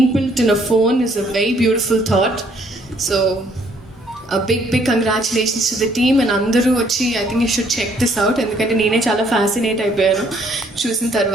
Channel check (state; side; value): normal; both; correlation 0.65